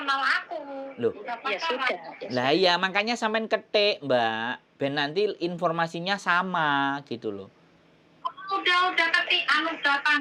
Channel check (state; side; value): identical; both; correlation 1.00